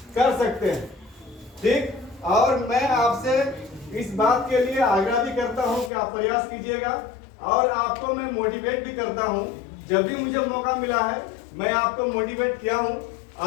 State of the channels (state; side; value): drops out; right; at 5.9 s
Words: कर सकते हैं। ठीक, और मैं आपसे इस बात के लिए आग्रह भी करता हूं कि आप प्रयास कीजिएगा और आपको मैं मोटिवेट भी करता हूं। जब भी मुझे मौका मिला है मैं आपको मोटिवेट किया हूं